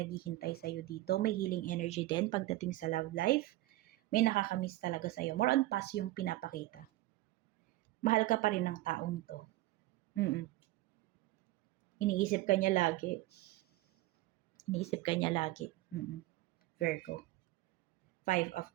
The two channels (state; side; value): quieter; left; 17.8 dB